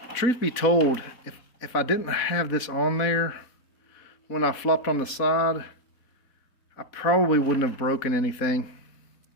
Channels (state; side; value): late; right; 4.1 ms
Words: Truth be told, if I didn't have this on there when I flopped on the side, I probably wouldn't have broken anything.